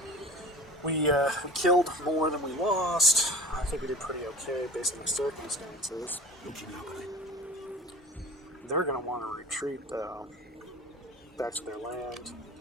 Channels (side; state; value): both; normal; correlation 0.38